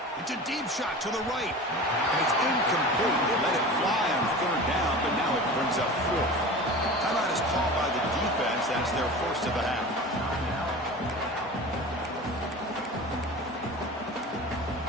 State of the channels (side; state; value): both; normal; correlation 0.35